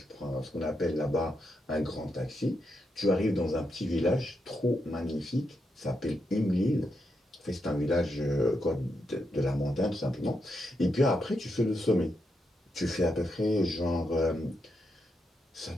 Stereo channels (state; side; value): normal; both; correlation 0.84